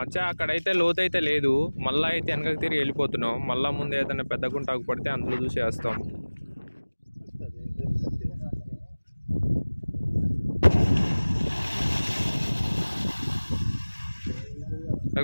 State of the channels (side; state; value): both; inverted; correlation -1.00